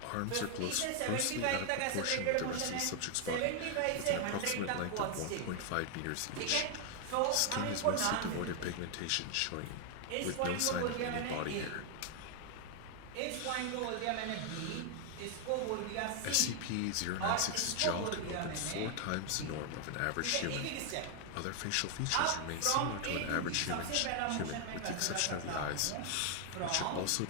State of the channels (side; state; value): both; different; correlation 0.00